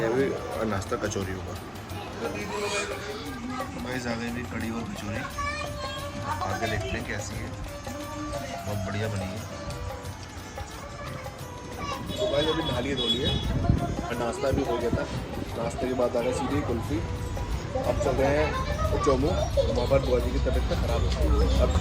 अभी और नाश्ता कचौरी होगा। भाई आ गई भी कड़ी और कचौरी आगे देखते हैं कैसी है, बहुत बढ़िया बनी है। तो भाई अभी नहा लिए धो लिए और नाश्ता भी हो गया था। नाश्ते के बाद आ गए सीधी कुल्फ़ी। अब चल रहे हैं जम्मू, वहाँ पर बुआ जी की तबीयत तो ख़राब है, अब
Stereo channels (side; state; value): both; identical; correlation 1.00